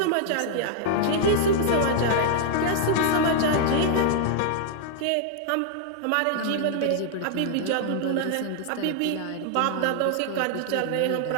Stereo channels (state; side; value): different; both; correlation 0.00